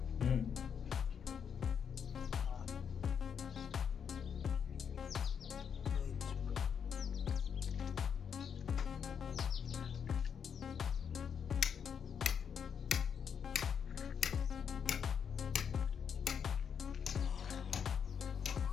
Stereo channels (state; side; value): quieter; right; 7.3 dB